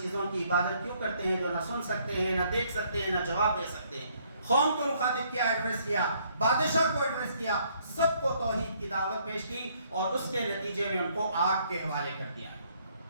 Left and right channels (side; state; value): both; inverted; correlation -0.67